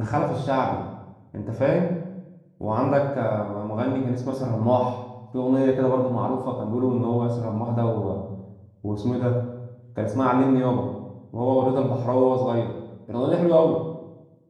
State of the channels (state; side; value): identical; both; correlation 1.00